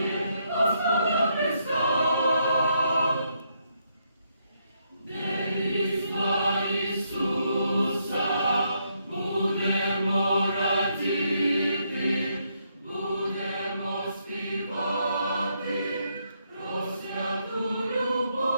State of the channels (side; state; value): both; inverted; correlation -0.76